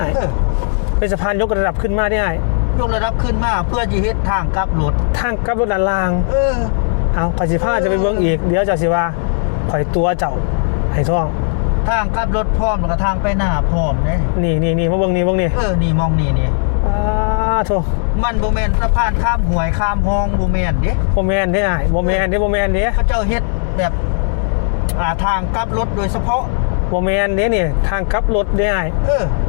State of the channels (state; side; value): silent; right; digital silence